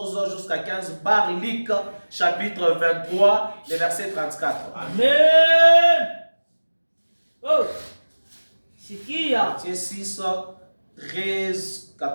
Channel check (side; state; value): both; inverted; correlation -1.00